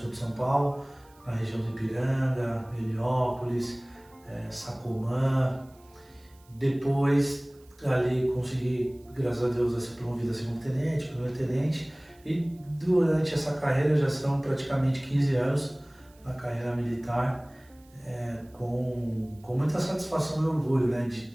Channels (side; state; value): right; noise; hiss, 30 dB below the sound